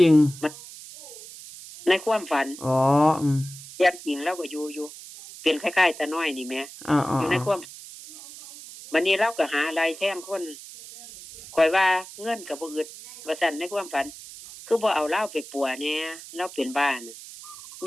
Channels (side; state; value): right; noise; hiss, 15 dB below the sound